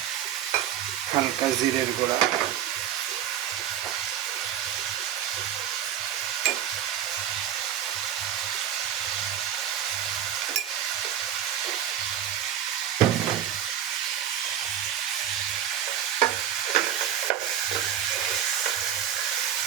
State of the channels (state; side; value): quieter; left; 10.3 dB